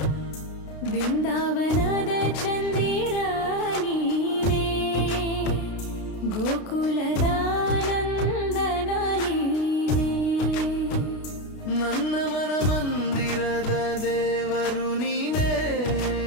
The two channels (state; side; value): late; right; 33 ms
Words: ಬೃಂದಾವನದ ಚಂದಿರ ನೀನೇ, ಗೋಕುಲದ ನಂದನ ನೀನೇ, ನನ್ನ ಮನ ಮಂದಿರದ ದೇವರು ನೀನೇ.